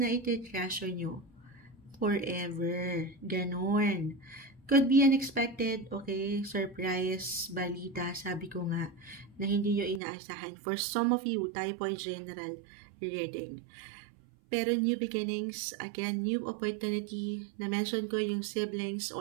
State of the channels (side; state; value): left; drops out; at 10.0 s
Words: iti-treasure nyo. Forever. Ganon. Could be unexpected, okay, surprise, balita, sabi ko nga, na hindi nyo inaasahan. For some of you, tayo po ay general reading. Pero new beginnings, again, new opportunity, na-mention ko yung siblings